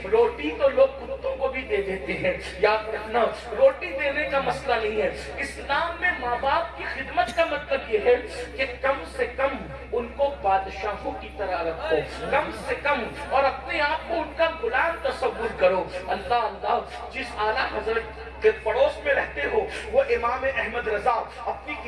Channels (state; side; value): identical; both; correlation 1.00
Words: روٹی تو لوگ کتوں کو بھی دے دیتے ہیں۔ یاد رکھنا روٹی دینے کا مسئلہ نہیں ہے، اسلام میں ماں باپ کی خدمت کا مطلب یہ ہے کہ کم سے کم ان کو بادشاہوں کی طرح رکھو، کم سے کم، اور اپنے آپ کو ان کا غلام تصور کرو۔ اللہ اللہ، جس اعلیٰ حضرت کے پڑوس میں رہتے ہو وہ امام احمد رضا اپنی